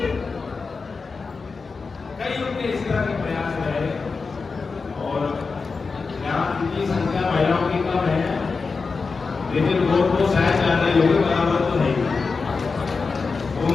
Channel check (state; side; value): quieter; right; 4.6 dB